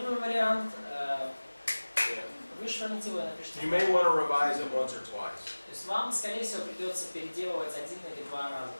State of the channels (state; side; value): inverted; both; correlation -1.00